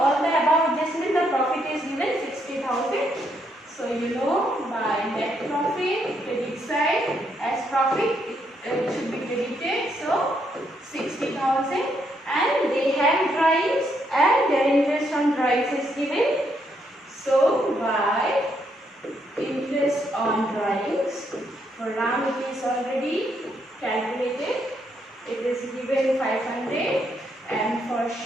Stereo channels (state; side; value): normal; both; correlation 0.75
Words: the above adjustment, the profit is given 60,000. So you know by net profit, credit side as profit, it should be credited. So 60,000 and they have drawings and their interest on drawings is given. So by interest on drawings, for Ram it is already calculated. It is given 500 and